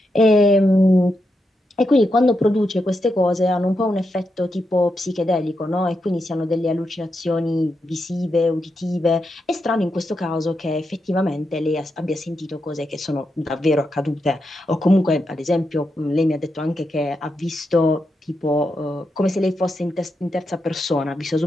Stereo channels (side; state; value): both; normal; correlation 0.85